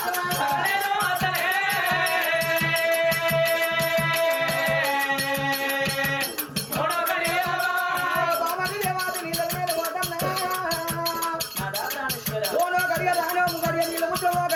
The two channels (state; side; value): identical; both; correlation 1.00